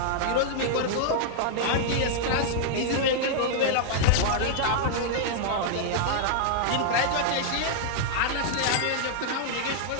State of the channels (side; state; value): both; different; correlation -0.01